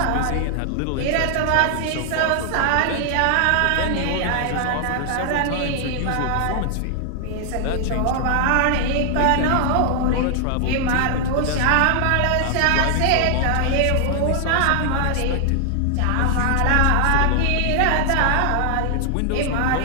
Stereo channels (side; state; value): both; different; correlation 0.00